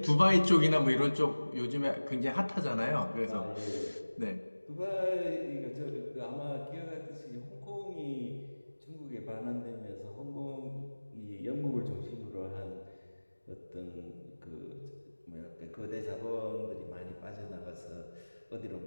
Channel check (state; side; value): inverted; both; correlation -1.00